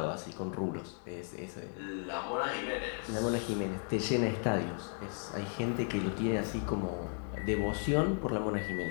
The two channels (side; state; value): right; silent; 54 dB below the other